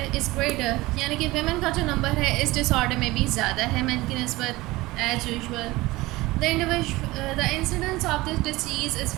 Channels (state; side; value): quieter; left; 20.0 dB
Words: यानी कि वेमेन का जो नंबर है इस डिसऑर्डर में भी ज़्यादा है मैन की निस्बत as usual. The incidence of this disease is